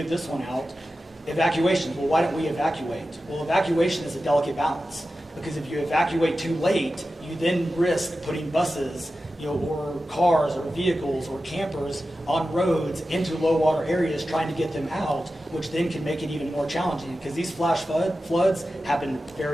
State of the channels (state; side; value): normal; both; correlation 0.93